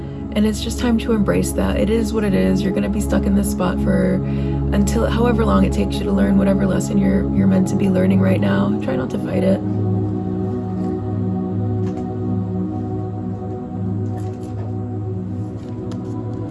it's just time to embrace that. It is what it is. You're gonna be stuck in this spot until however long it takes you to learn whatever lesson you're meant to be learning right now. Try not to fight it.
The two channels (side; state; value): both; identical; correlation 1.00